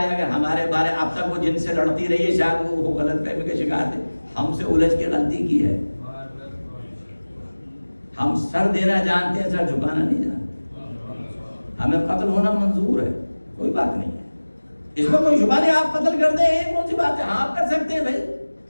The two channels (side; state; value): both; inverted; correlation -1.00